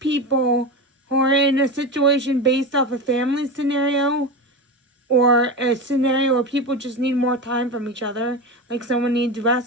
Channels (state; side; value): normal; both; correlation 0.22